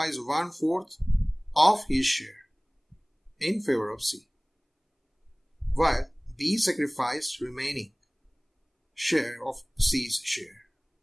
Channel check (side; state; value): both; identical; correlation 1.00